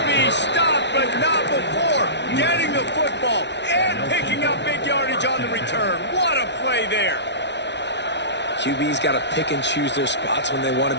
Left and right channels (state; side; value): late; right; 0.51 ms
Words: be stopped, but not before getting the football and picking up big yardage on the return. What a play there. QB's got to pick and choose their spots when they want to